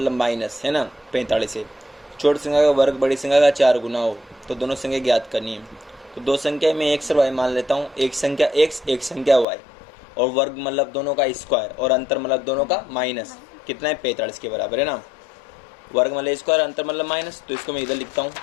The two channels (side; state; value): right; drops out; at 9.5 s